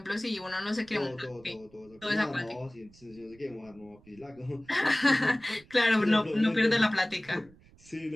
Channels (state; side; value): noise; right; rumble, 26 dB below the sound